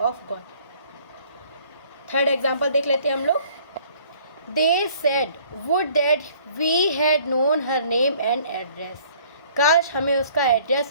God. Third example देख लेते हैं हम लोग। They said would that we had known her name and address. काश हमें उसका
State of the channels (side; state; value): both; inverted; correlation -0.57